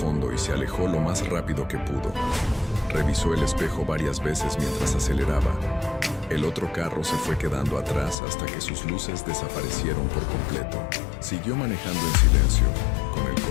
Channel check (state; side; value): drops out; right; at 8.2 s